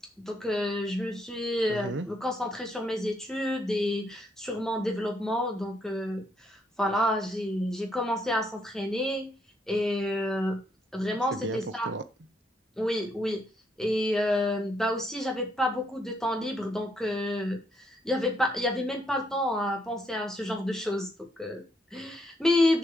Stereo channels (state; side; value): normal; both; correlation 0.74